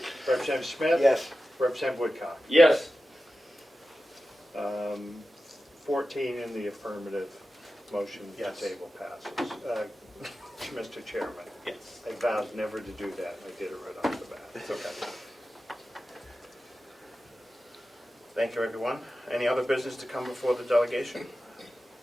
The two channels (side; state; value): both; normal; correlation 0.93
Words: Representative Smith? Yes. Representative Woodcock? Yes. 14 in the affirmative, motion to Yes. table passes. Mr. Chairman, Yes. I vowed never to do that, I did it right off the bat. It's okay. Thank you, everyone. Any other business to come before the delegation?